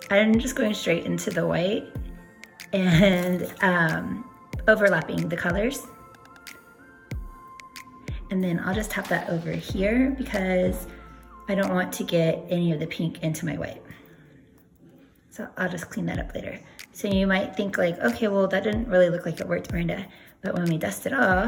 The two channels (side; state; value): both; identical; correlation 1.00